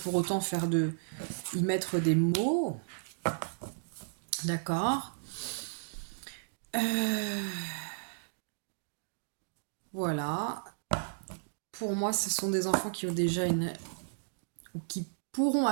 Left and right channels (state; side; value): silent; left; digital silence